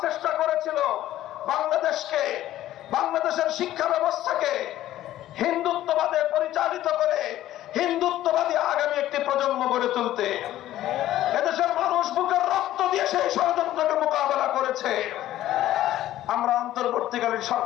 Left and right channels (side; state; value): right; quieter; 13.7 dB